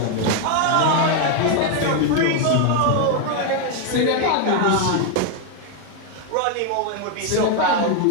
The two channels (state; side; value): different; both; correlation 0.00